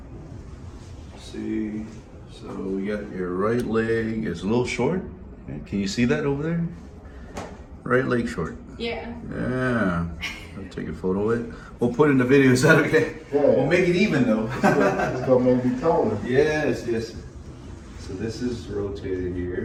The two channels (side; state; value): both; identical; correlation 1.00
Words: See, so we got your right leg is a little short. Okay, can you see that over there? Right leg short. Yeah. Yeah. I'll take a photo of it. We'll put it in the video. Is that okay? Yeah. We'll make it even though. It's gonna make me taller. Yes, yes. So this is rotated